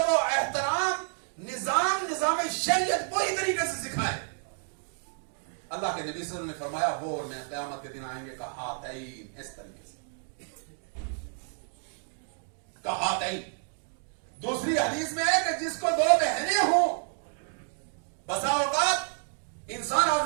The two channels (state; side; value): silent; left; 58 dB below the other